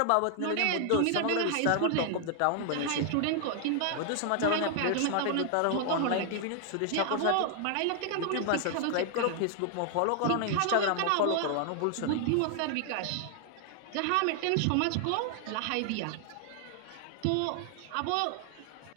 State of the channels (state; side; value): different; both; correlation 0.00